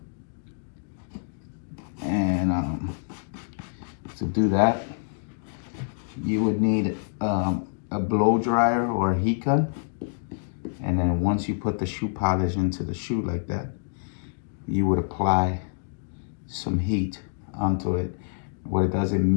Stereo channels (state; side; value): silent; right; digital silence